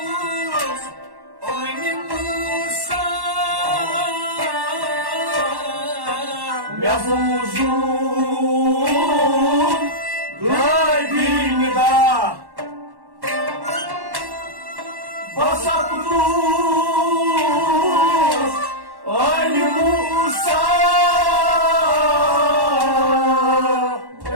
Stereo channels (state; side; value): late; left; 1.1 ms